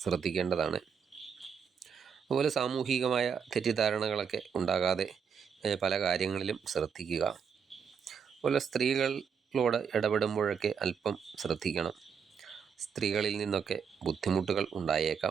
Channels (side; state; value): left; quieter; 6.7 dB